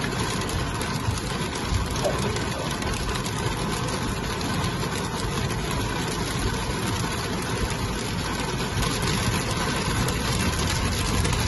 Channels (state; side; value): identical; both; correlation 1.00